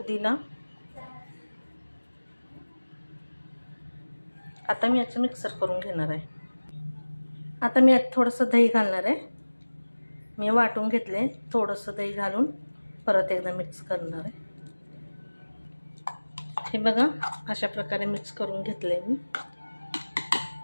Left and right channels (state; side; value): inverted; both; correlation -1.00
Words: आता मी याचं मिक्सर करून घेणार आहे। आता मी यात थोडंसं दही घालणार आहे। मी वाटून घेतले, थोडंसं दही घालून परत एकदा मिक्स करणार आहे। हे बघा अशा प्रकारे मिक्स करून घेतले मी।